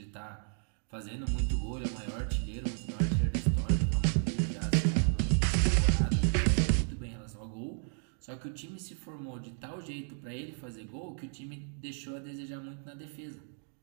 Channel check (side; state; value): left; silent; 56 dB below the other